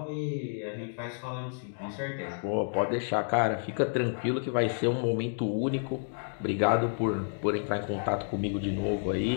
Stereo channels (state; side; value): silent; right; digital silence